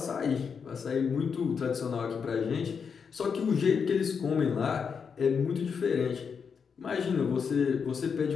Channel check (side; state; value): right; quieter; 6.2 dB